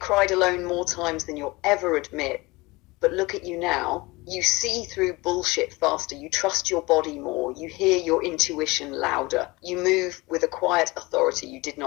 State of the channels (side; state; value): right; quieter; 22.9 dB